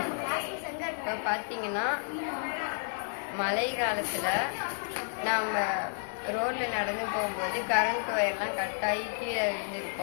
இப்போ பார்த்தீங்கன்னா மழை காலத்தில் நாம் ரோட்டில் நடந்து போகும்போது கரண்ட் ஒயர்லாம் கட்டாகி கீழே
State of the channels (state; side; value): silent; right; digital silence